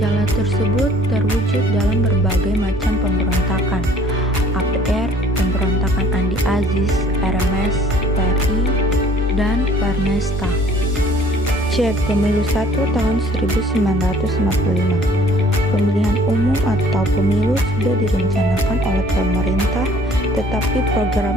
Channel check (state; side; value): normal; both; correlation 0.55